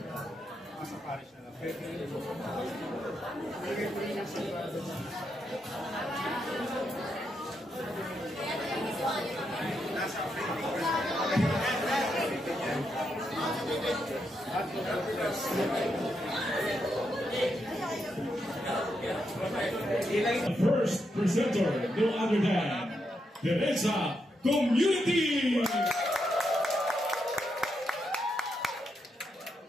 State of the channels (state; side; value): normal; both; correlation 0.82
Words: Nasa parish na lang. The first presenter, no other than Teresa Community.